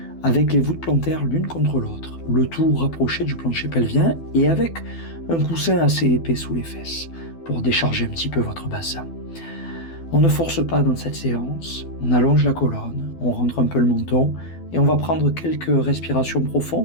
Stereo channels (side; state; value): right; late; 12 ms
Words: avec les voûtes plantaires l'une contre l'autre, le tout rapproché du plancher pelvien et avec un coussin assez épais sous les fesses pour décharger un petit peu votre bassin. On ne force pas dans cette séance, on allonge la colonne, on rentre un peu le menton et on va prendre quelques respirations